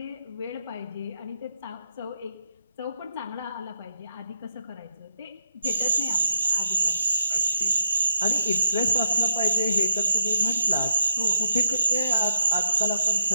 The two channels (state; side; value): inverted; both; correlation -0.79